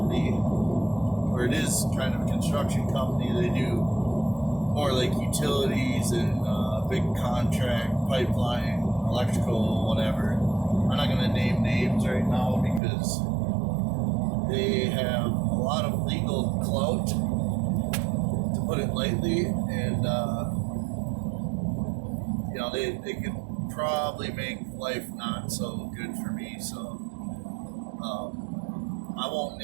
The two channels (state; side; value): drops out; left; at 12.8 s